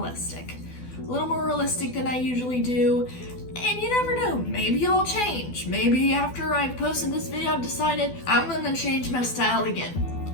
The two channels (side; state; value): right; late; 12 ms